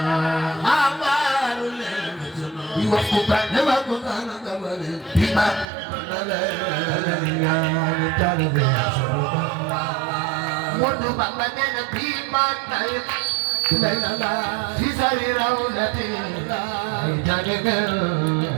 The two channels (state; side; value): drops out; left; at 5.7 s